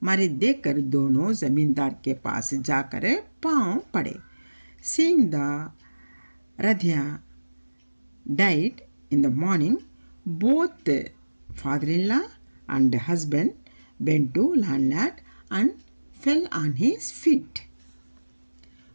मारे देखकर दोनों जमींदार के पास जाकर पांव पड़े. Seeing the Radhya died in the morning, both father-in-law and husband went to landlord and fell on his feet.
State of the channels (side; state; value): both; inverted; correlation -1.00